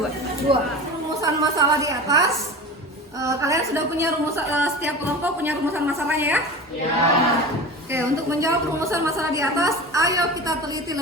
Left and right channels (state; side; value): normal; both; correlation 0.32